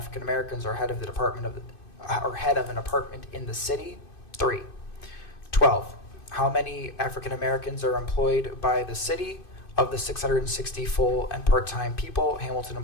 Americans are head of an apartment in the city? 3. 12. How many African Americans are employed by the city? Of the 660 full and part-time people Hamilton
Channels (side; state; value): right; late; 2.5 ms